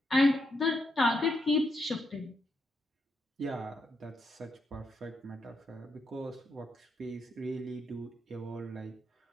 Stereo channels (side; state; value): both; normal; correlation 0.80